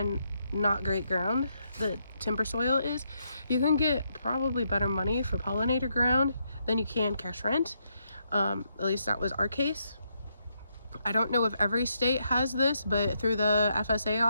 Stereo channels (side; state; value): both; inverted; correlation -0.78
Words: not great ground, the timber soil is, you can get probably better money for pollinator ground than you can cash rent. At least that was our case. I don't know if every state has this, but through the FSA